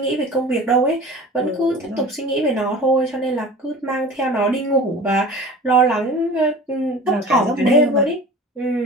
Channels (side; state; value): both; normal; correlation 0.39